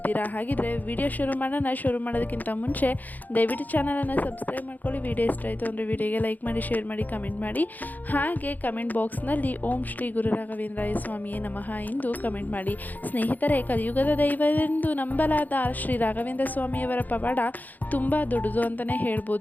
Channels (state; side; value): late; right; 0.083 ms